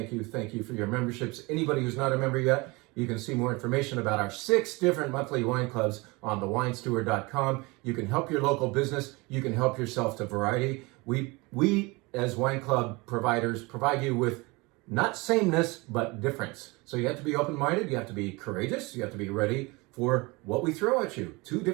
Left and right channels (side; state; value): left; quieter; 25.1 dB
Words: your memberships. Anybody who's not a member yet, you can see more information about our 6 different monthly wine clubs on thewinesteward.com. You can help your local business. You can help yourself to variety. We as wine club providers provide you with not sameness, but difference. So you have to be open-minded. You have to be courageous. You have to be ready for what we throw at you. 2